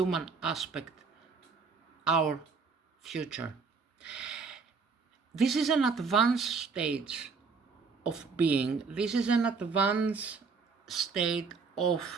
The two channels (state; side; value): quieter; left; 4.9 dB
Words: aspect, our future. This is an advanced stage of being. This is an advanced state